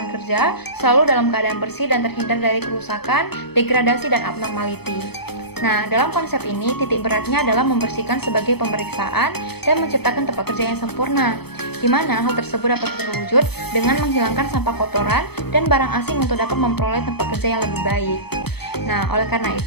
kerja selalu dalam keadaan bersih dan terhindar dari kerusakan, degradasi, dan abnormality. Nah, dalam konsep ini, titik beratnya adalah membersihkan sebagai pemeriksaan dan menciptakan tempat kerja yang sempurna, di mana hal tersebut dapat terwujud dengan menghilangkan sampah kotoran dan barang asing untuk dapat memperoleh tempat kerja yang lebih baik. Nah, oleh karena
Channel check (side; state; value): right; late; 0.97 ms